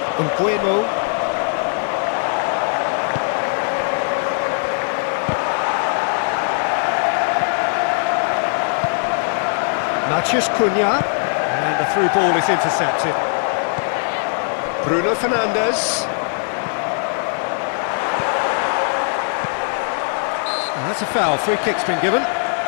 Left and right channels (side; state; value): right; silent; 66 dB below the other